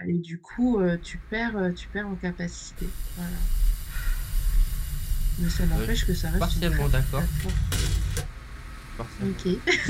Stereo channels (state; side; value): identical; both; correlation 1.00